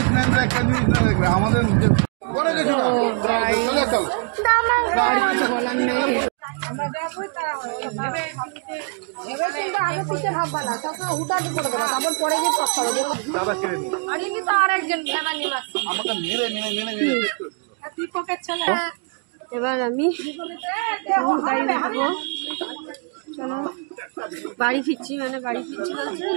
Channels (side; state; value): left; quieter; 36.9 dB